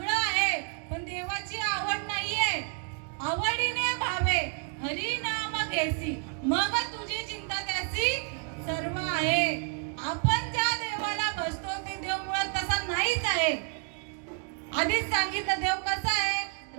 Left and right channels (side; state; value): left; quieter; 37.8 dB